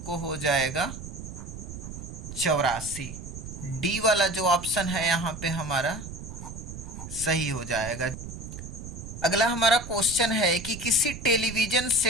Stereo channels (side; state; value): right; noise; rumble, 10 dB below the sound